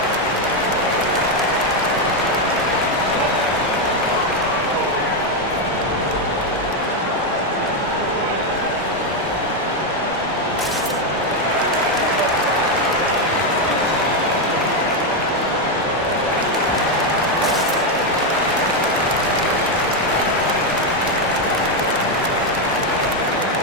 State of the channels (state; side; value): normal; both; correlation 0.05